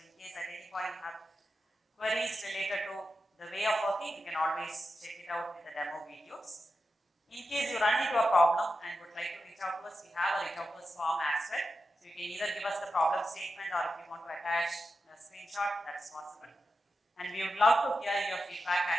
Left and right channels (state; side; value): normal; both; correlation 0.90